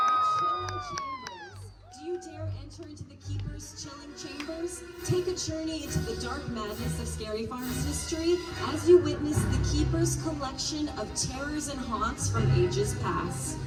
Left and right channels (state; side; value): identical; both; correlation 1.00